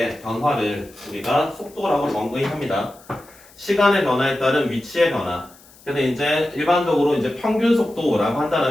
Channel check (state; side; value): noise; left; hiss, 25 dB below the sound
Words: 변화를 우리가 속도라고 정의합니다. 시간의 변화에 따른 위치의 변화. 그래서 이제 일반적으로 이제 평균 속도라고